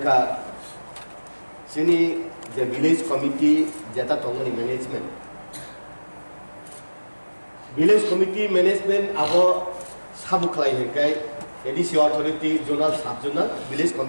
जोंनि जे विलेज कमिटी जेता दंमोन मैनेजमेंट विलेज कमिटी मैनेजमेंट आबो साबु खालायनायखाय एडिसि अथॉरिटी जोनाल साब जोनाल विलेज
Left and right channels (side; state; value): both; inverted; correlation -1.00